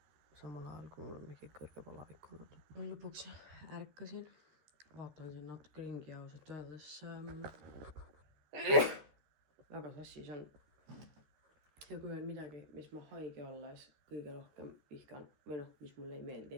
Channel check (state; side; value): late; left; 13 ms